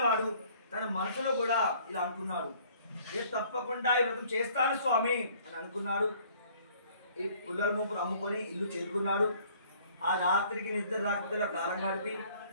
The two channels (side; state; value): both; inverted; correlation -0.57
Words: తన మనసులో కూడా ఇలా అనుకున్నాడు, నేను తప్పకుండా ఈ వ్రతం చేస్తాను స్వామి అని అనుకున్నాడు. ఈ పుల్లల మూపును అమ్ముకొని ఇల్లు చేరుకున్నాడు. ఆ రాత్రికి నిద్ర రాకపోతే కాలం గడిపి